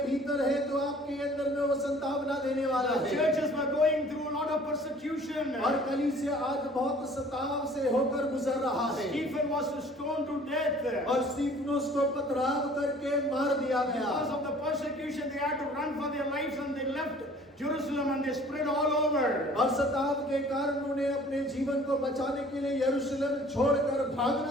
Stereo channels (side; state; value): both; normal; correlation 0.51